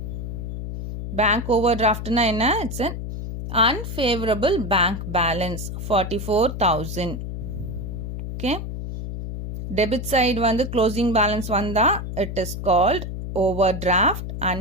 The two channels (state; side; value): noise; left; hum, 6 dB below the sound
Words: Bank overdraftனா என்ன? It's an unfavorable bank balance, 44,000. Okay, debit side வந்து closing balance வந்தா it is called overdraft,